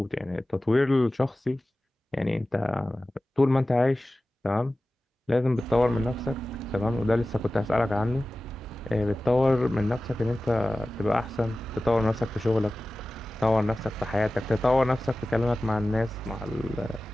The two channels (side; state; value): both; normal; correlation 0.96